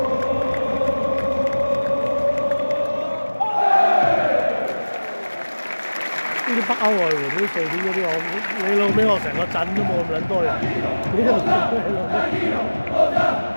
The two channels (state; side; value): inverted; both; correlation -1.00